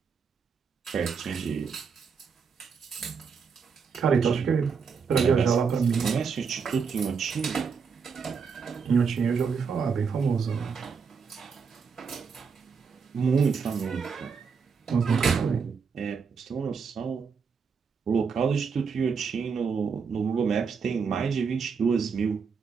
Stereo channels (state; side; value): quieter; left; 5.8 dB